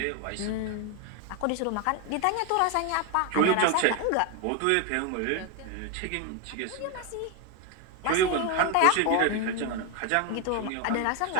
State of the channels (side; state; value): both; different; correlation 0.01